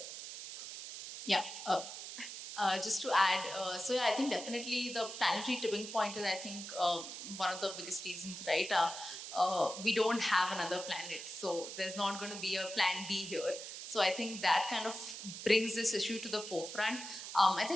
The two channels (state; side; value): noise; right; hiss, 9 dB below the sound